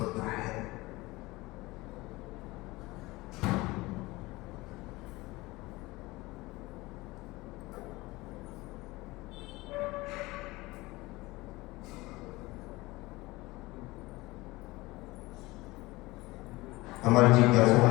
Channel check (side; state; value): right; quieter; 21.0 dB